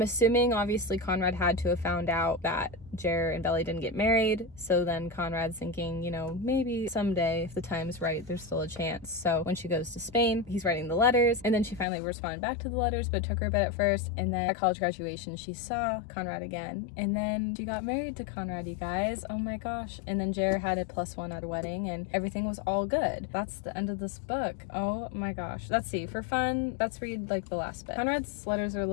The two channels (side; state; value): right; drops out; at 11.9 s